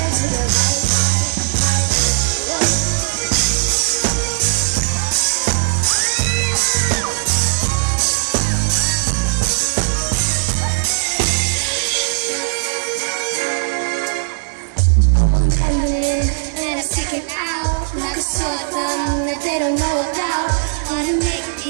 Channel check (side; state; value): left; silent; 67 dB below the other